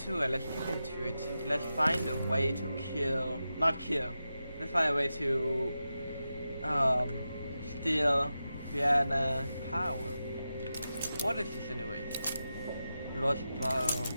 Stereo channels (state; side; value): inverted; both; correlation -0.91